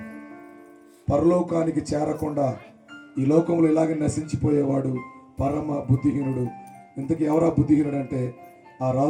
పరలోకానికి చేరకుండా ఈ లోకంలో ఇలాగే నశించిపోయేవాడు పరమ బుద్ధిహీనుడు. ఇంతకీ ఎవరా బుద్ధిహీనుడు అంటే, ఆ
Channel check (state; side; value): identical; both; correlation 1.00